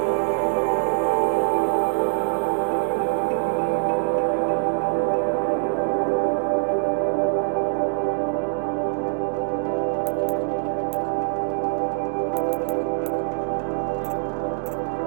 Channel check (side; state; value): left; silent; digital silence